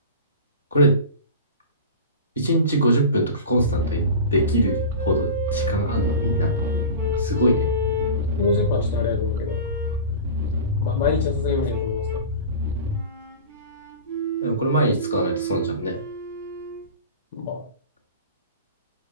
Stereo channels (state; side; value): inverted; both; correlation -0.33